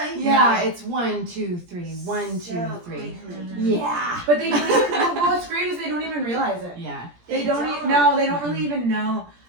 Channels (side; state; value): left; late; 17 ms